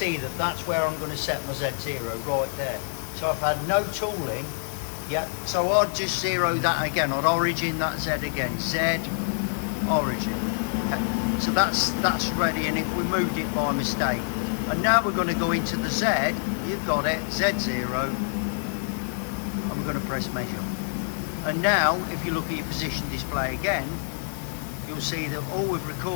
that that's where I'm going to set my Z0, right there. So I've had no tooling, yeah, so I'd just zero that again. I'd origin that Z again, Z, origin. Okay. So that's ready, and if we moved it by mistake. And now we're going to go into the Z, you've got it, Z0, and we're going to press measure. And now, if you look at your position display again, you'll see that all we've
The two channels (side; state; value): right; silent; digital silence